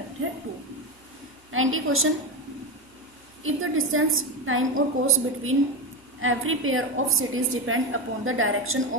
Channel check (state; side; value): normal; both; correlation 0.16